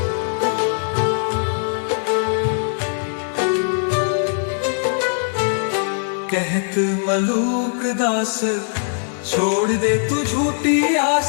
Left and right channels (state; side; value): silent; right; digital silence